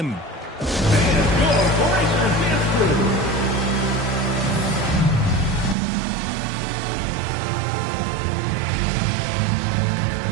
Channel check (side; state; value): left; drops out; at 5.8 s